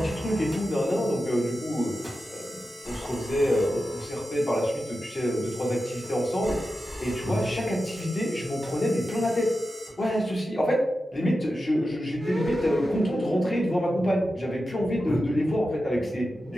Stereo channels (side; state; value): both; normal; correlation 0.91